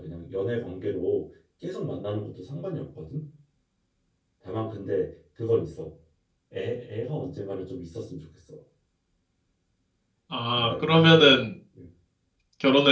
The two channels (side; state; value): both; identical; correlation 1.00